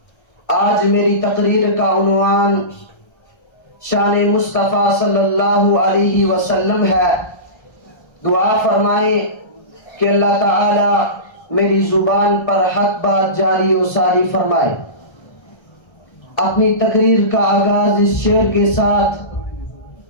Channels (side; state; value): right; late; 1.3 ms